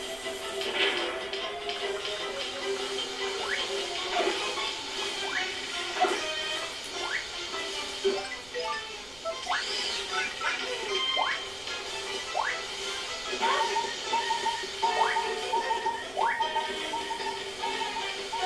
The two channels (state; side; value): noise; right; rumble, 20 dB below the sound